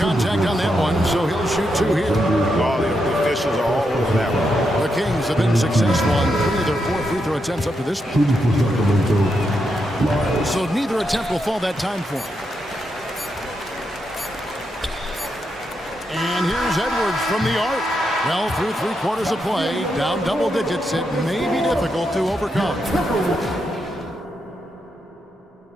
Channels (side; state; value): both; normal; correlation 0.83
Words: on that one, so he'll shoot 2 here. Oh, the officials are all over that one. The Kings have been successful on 3 of their 4 free throw attempts up to this point. So neither attempt will fall that time for him. And here's Edwards from the arc. Well, through 3 quarters of play, down double digits, it may be difficult to overcome.